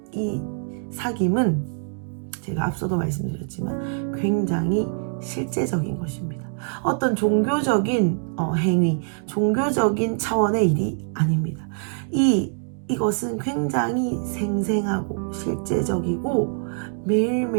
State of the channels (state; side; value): silent; left; 63 dB below the other